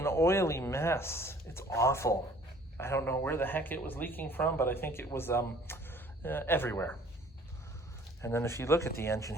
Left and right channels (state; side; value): normal; both; correlation 0.54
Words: oily mess. It's awful. I don't know where the heck it was leaking from, but I think it was everywhere. And then if you look at the engine